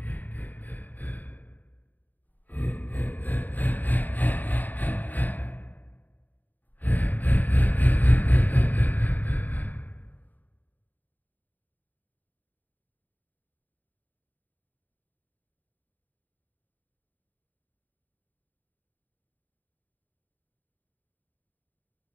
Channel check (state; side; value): late; right; 0.085 ms